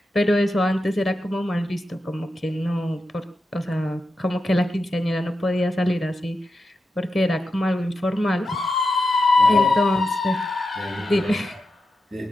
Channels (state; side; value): normal; both; correlation 0.89